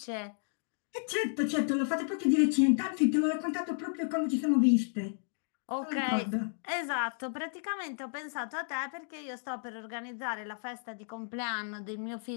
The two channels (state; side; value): silent; right; digital silence